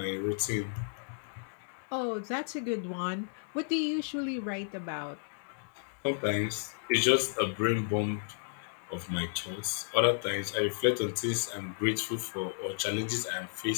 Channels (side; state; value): right; silent; digital silence